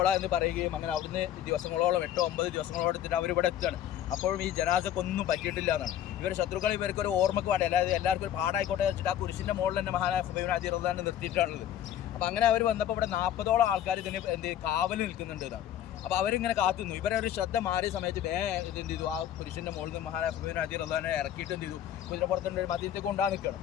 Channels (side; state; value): right; quieter; 11.0 dB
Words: എന്ന് പറയുകയും അങ്ങനെ അവിടുന്ന് ദിവസങ്ങളോളം 8-9 ദിവസങ്ങളോളം എടുത്തിട്ട് അവരിവിടെ എത്തുകയാണ്. അപ്പോഴും ഈ ജനാസക്കൊന്നും പറ്റിയിട്ടില്ല എന്നാണ്. ഇവർ ശത്രുക്കൾ ഇവർക്കൊരു ഓർമ്മക്ക് വേണ്ടി, അതായത് എല്ലാവർക്കും ഒരു പാടായിക്കോട്ടെ വെച്ചിട്ട് ആ കുരിശിൻ്റെ മുകളിൽ തന്നെ മഹാനായ ഖുബൈബ് ബിൻ അദി റളിയല്ലാഹു നിർത്തിയിട്ടാണുള്ളത്. അപ്പോൾ അങ്ങനെ അവർ വന്നപ്പോൾ ഇവിടെ 40ഓളം ആൾക്കാർ ഇതിന് കാവൽ നിൽക്കുന്നുണ്ട് എന്നാണ്. അപ്പോൾ അവരിങ്ങനെ കാത്തുന്നു. ഇവരൊരു ശ്രദ്ധ മാറിയ സമയത്ത് ഇത് എന്ത് ചെയ്തു, ആ പുരുഷൻ്റെ മുകളിൽ നിന്ന് മഹാനായ ഖുബൈബ് ബിൻ അദി റളിയല്ലാഹുവിനെ ഇറക്കിയിട്ട് എന്ത് ചെയ്തു, കുതിരപ്പുറത്തിൻ്റെ ഒരു മദീനത്തേക്ക് കൊണ്ടുപോകാൻ നിൽക്കണം.